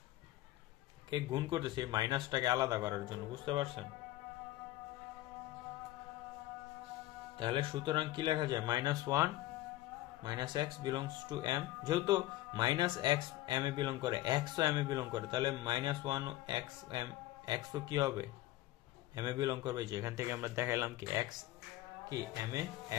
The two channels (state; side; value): quieter; right; 16.4 dB